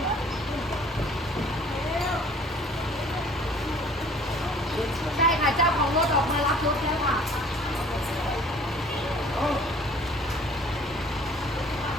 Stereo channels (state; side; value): normal; both; correlation 0.52